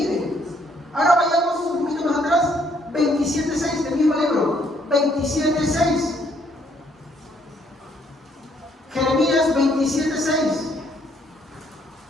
ahora vayamos un poquito más atrás, 27:6 del mismo libro, 27:6. Jeremías 27:6.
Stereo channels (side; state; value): both; normal; correlation 0.68